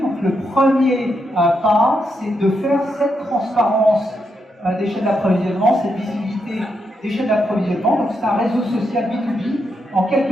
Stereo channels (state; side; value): normal; both; correlation 0.82